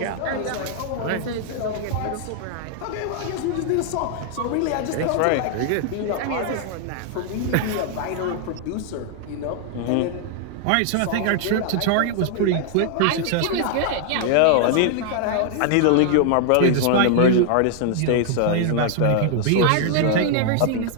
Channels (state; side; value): different; both; correlation 0.00